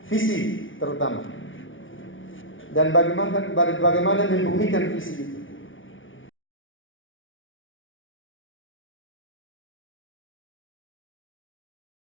Visi terutama. Dan bagaimana membumikan visi itu.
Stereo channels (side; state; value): right; late; 0.57 ms